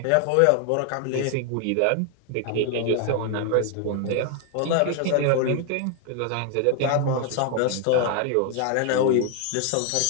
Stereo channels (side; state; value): both; different; correlation 0.00